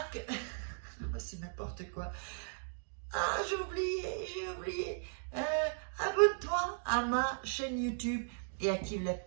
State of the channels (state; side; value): silent; left; digital silence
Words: c'est n'importe quoi. Ah, j'ai oublié. Abonne-toi à ma chaîne YouTube et active la